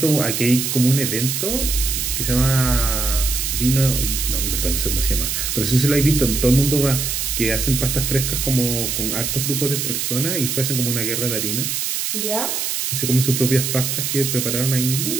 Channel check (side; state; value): right; noise; hiss, 1 dB below the sound